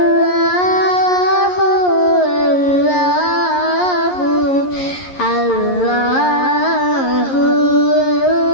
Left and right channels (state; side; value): late; right; 11 ms